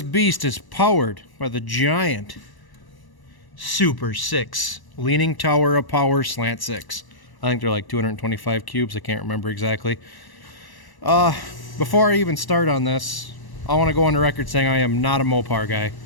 beast is powered by the giant Super 6 Leaning Tower of Power Slant 6. I think they're like 225 cubes. I can't remember exactly. Before I even start on this, I want to go on the record saying I am not a Mopar guy.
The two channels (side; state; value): right; late; 1.0 ms